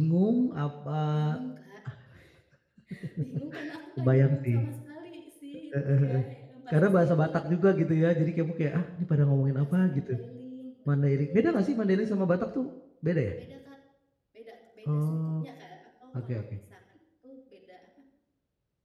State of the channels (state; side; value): identical; both; correlation 1.00